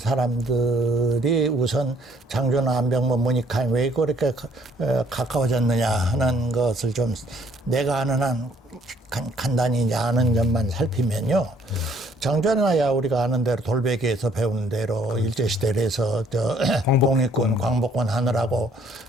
우선 장준하, 안병무, 문익환 왜 그렇게 가까워졌느냐 하는 것을 좀 내가 아는 한 간단히 이제 아는 점만 살피면요. 장준하야 우리가 아는 대로 돌베개에서 배우는 대로 일제시대에서 독립군, 광복군 하느라고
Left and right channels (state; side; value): normal; both; correlation 0.63